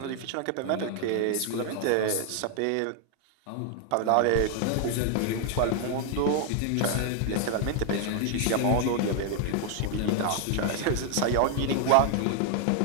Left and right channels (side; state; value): both; different; correlation 0.00